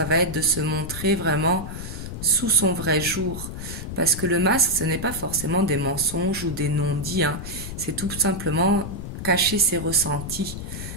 va être de se montrer vraiment sous son vrai jour, parce que le masque, ce n'est pas forcément des mensonges ou des non-dits, hein. C'est tout simplement cacher ses ressentis.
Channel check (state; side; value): noise; left; rumble, 8 dB below the sound